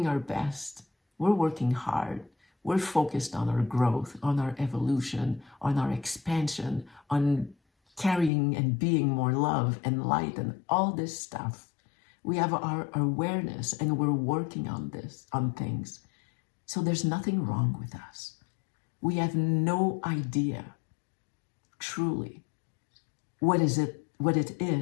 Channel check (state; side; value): drops out; right; at 8.3 s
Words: our best. We're working hard. We're focused on our growth, on our evolution, on our expansion, on carrying and being more love and light and all this stuff. We have our awareness and we're working on things. So there's nothing wrong with us. We have no idea, truly, what it